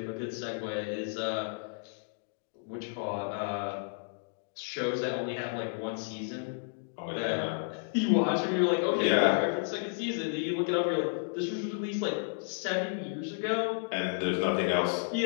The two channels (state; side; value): silent; right; digital silence